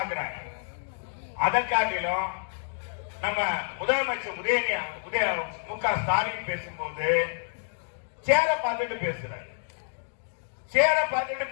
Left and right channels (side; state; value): right; silent; digital silence